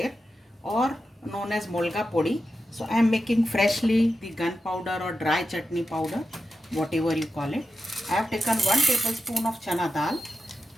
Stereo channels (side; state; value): both; normal; correlation 0.90